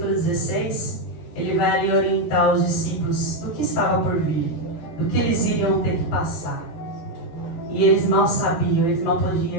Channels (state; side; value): late; right; 12 ms